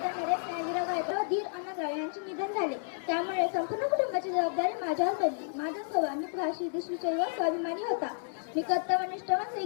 नरेश नागीराव गायकवाड धीर अण्णाराव यांचे निधन झाले. त्यामुळे संपूर्ण कुटुंबाची जबाबदारी माझ्यावर पडली. माझा स्वभाव मितभाषी देशविषयी व स्वाभिमानी होता. मी कर्तव्यनिष्ठ व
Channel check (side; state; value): right; silent; digital silence